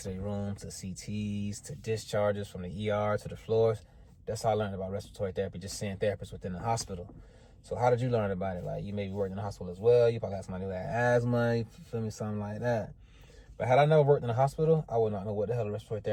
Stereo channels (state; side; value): identical; both; correlation 1.00